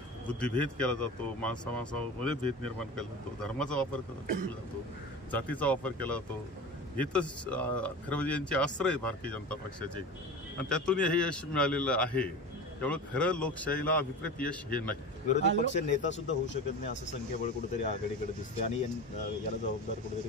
बुद्धिभेद केला जातो, माणसामध्ये भेद निर्माण केला जातो, धर्माचा वापर केला जातो, जातीचा वापर केला जातो, हे तर खरं म्हणजे यांचे अस्त्र आहे भारतीय जनता पक्षाचे आणि त्यातून हे यश मिळालेलं आहे. त्यामुळे खरं लोकशाहीला अभिप्रेत यश हे नाही. विरोधी पक्ष नेता सुद्धा होऊ शकत नाही असं संख्याबळ कुठेतरी आघाडीकडे दिसते आणि याला जबाबदार कुठेतरी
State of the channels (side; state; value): both; normal; correlation 0.31